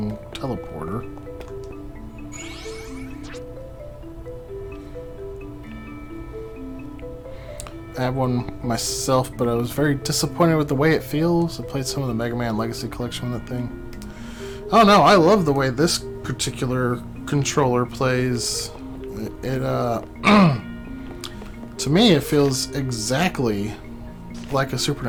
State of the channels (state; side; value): identical; both; correlation 1.00